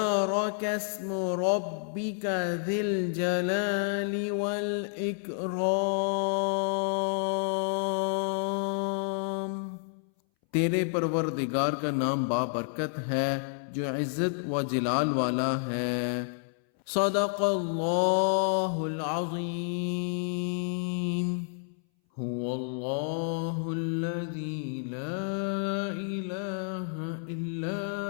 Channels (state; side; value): silent; right; 58 dB below the other